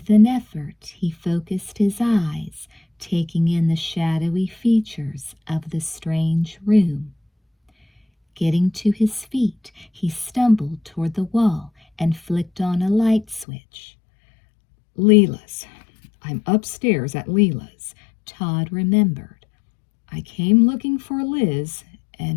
an effort, he focused his eyes, taking in the shadowy features of the strange room. Getting to his feet, he stumbled toward the wall and flicked on a light switch. Leela's. I'm upstairs at Leela's, Todd remembered. I came looking for Liz,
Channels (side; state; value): right; drops out; at 13.5 s